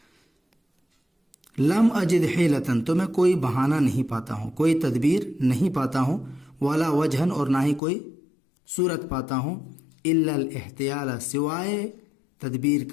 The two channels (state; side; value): drops out; right; at 7.8 s